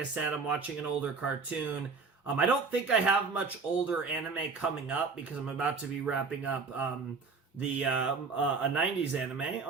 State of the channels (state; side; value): quieter; left; 4.7 dB